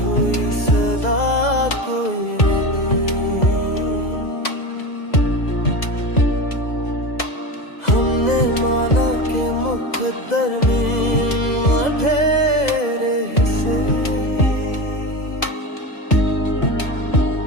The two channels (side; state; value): right; late; 2.0 ms